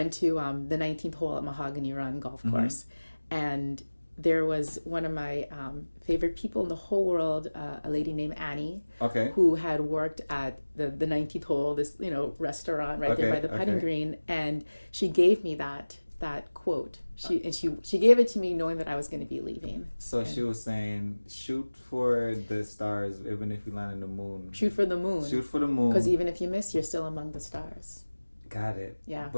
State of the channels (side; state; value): both; inverted; correlation -1.00